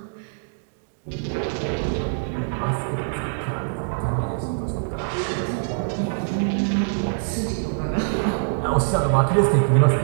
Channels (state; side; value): silent; left; digital silence